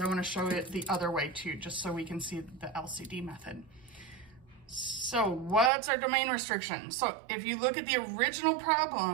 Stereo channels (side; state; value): left; drops out; at 5.7 s